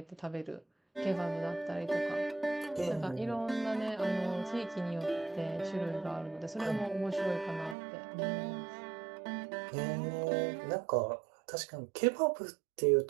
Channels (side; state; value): left; drops out; at 7.8 s